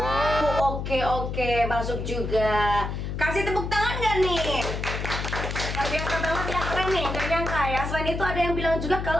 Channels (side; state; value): left; noise; hum, 4 dB below the sound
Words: Oke, masuk juga. Kasih tepuk tangan nggak nih? Luar biasa banget ya, keren nih, gak nyangka ya. Selain itu ada yang bilang juga